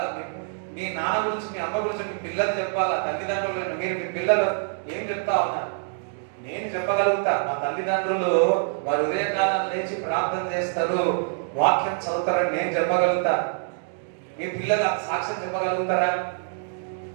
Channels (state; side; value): silent; left; 57 dB below the other